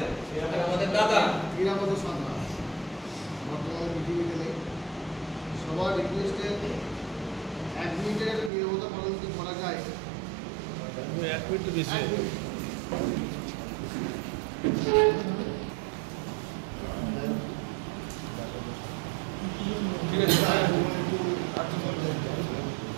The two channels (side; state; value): left; drops out; at 8.5 s